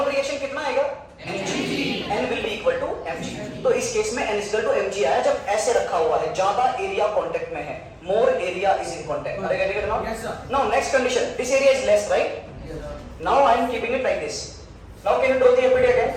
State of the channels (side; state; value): both; identical; correlation 1.00